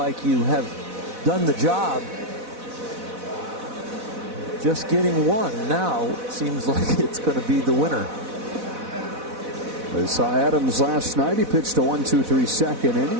you have done the job. Just getting 1 now seems like it's going to be the winner. They saw Adams last night. He pitched a 1-2-3 second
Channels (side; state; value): left; late; 4.1 ms